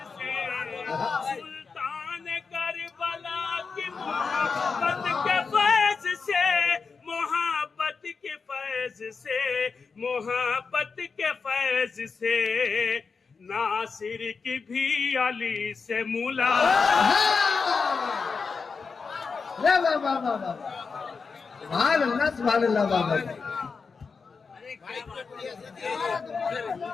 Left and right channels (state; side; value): quieter; right; 5.0 dB